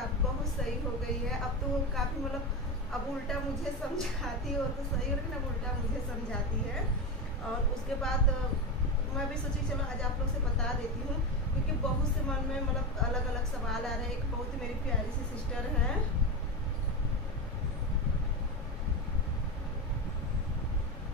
बहुत सही हो गई है। अब तो वो काफ़ी मतलब अब उल्टा मुझे समझाती है, वो तो सही हो, लेकिन अब उल्टा मुझे समझाती है। और उसके बाद मैं भी सोची चलो आज आप लोग से बता देती हूँ, क्योंकि बहुत से मन में मतलब अलग अलग सवाल आ रहे हैं। एक बहुत ही मेरी प्यारी सी सिस्टर है,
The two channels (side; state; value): both; normal; correlation 0.17